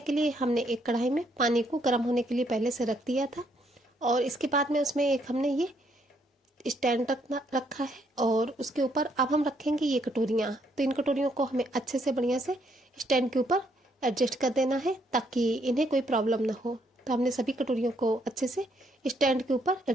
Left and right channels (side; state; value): both; normal; correlation 0.72